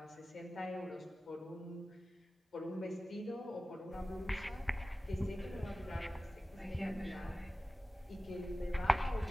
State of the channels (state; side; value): normal; both; correlation 0.96